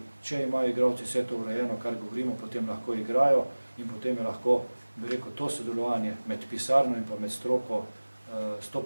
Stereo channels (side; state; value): both; inverted; correlation -1.00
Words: če imajo igralci vse to urejeno, kar govorimo, potem lahko igrajo in potem je lahko, bi rekel, to sodelovanje med pisarno in pa med stroko